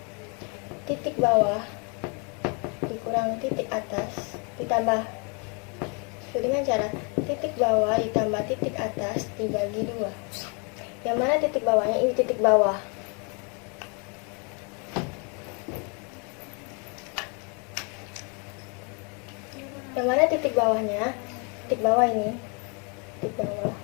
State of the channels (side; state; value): right; quieter; 35.0 dB